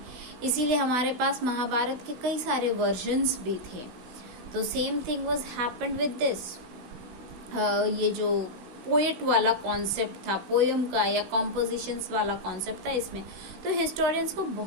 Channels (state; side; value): late; left; 16 ms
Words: इसीलिए हमारे पास महाभारत के कई सारे वर्जन्स भी थे। तो same thing was happened with this. ये जो पोएट वाला कॉन्सेप्ट था, पोयम का या कॉम्पोजिशंस वाला कॉन्सेप्ट था, इसमें तो हिस्टोरियंस को